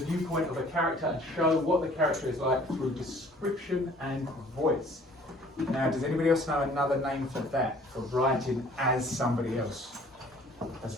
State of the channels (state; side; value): normal; both; correlation 0.54